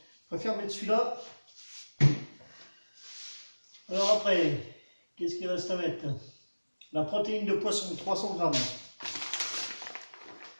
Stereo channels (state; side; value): inverted; both; correlation -1.00